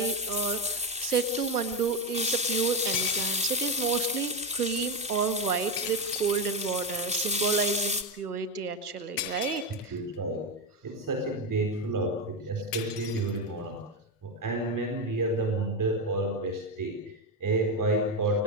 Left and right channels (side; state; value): both; normal; correlation 0.11